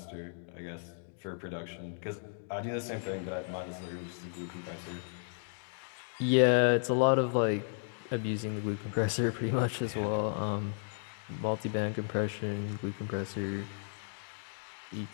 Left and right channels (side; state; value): right; silent; digital silence